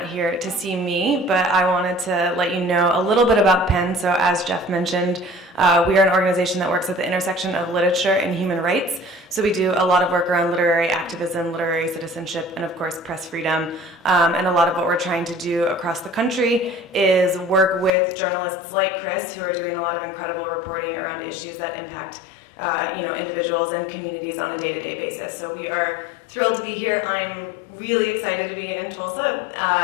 here to see me, but I wanted to let you know a little bit about PEN. So as Jeff mentioned, we are an organization that works at the intersection of literature and human rights. So we do a lot of work around literary activism, literary citizenship, and of course press freedom. And a lot of what we're trying to do across the country is work with journalists like Chris, who are doing a lot of incredible reporting around issues that impact individuals and communities on a day-to-day basis. So we are thrilled to be here. I'm really excited to be in Tulsa.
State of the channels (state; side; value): drops out; right; at 17.9 s